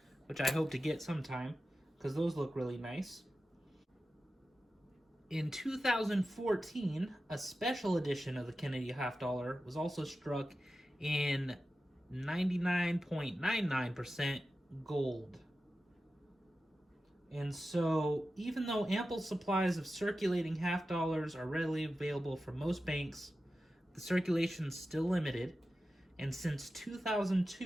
which I hope to get sometime because those look really nice. In 2014, a special edition of the Kennedy half dollar was also struck in 99.99% gold. And so, even though ample supplies of circulating half dollars are readily available from most banks, the circulation is still limited. And since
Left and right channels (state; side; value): normal; both; correlation 0.93